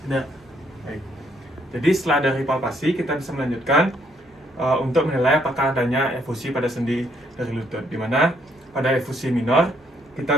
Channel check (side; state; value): both; normal; correlation 0.70